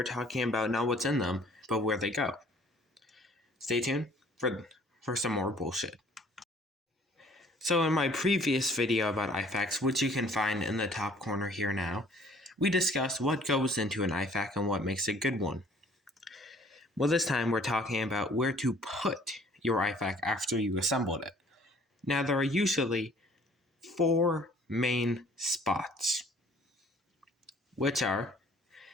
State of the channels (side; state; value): both; normal; correlation 0.56